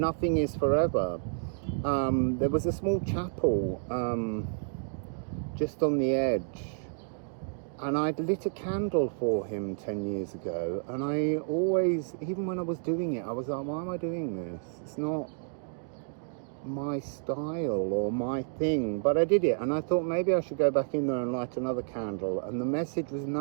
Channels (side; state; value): left; silent; digital silence